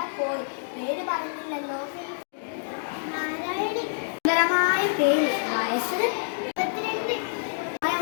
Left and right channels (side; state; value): right; silent; digital silence